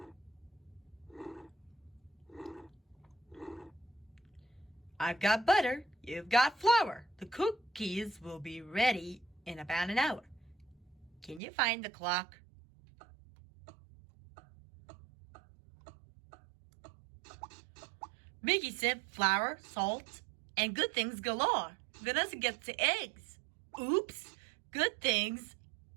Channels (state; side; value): drops out; left; at 11.4 s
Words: I've got butter, you've got flour. The cookies will be ready in about an hour. Can you find the clock? Mickey said flour, salt, and good things galore. Vanessa gets the eggs. Oops, good things,